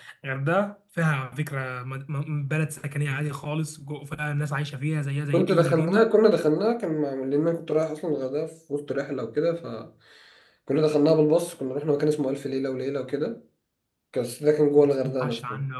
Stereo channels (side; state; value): both; identical; correlation 1.00